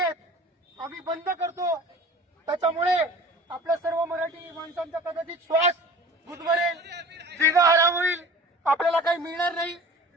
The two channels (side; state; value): both; normal; correlation 0.42